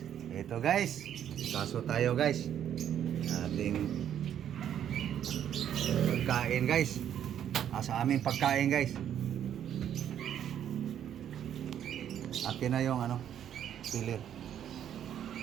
Ito guys, kaso tayo guys. Ating pagkain guys. Sa aming pagkain guys. Atin na yung pilir.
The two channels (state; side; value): quieter; left; 9.9 dB